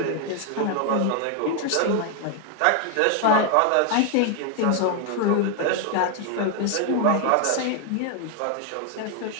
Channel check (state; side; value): different; both; correlation 0.00